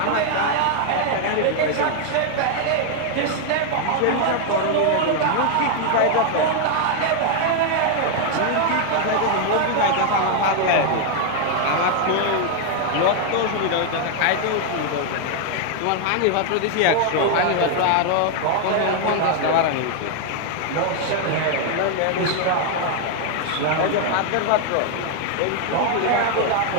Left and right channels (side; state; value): both; different; correlation 0.00